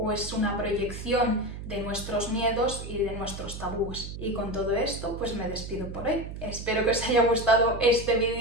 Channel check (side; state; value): right; noise; hum, 9 dB below the sound